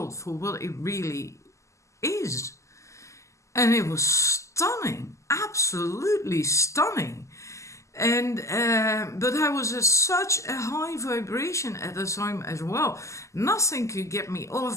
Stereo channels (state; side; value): late; right; 0.15 ms